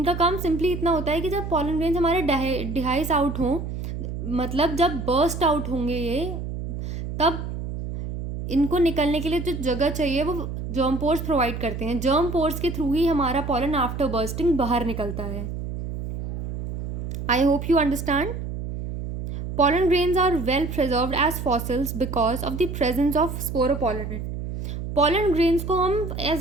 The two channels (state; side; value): noise; right; hum, 6 dB below the sound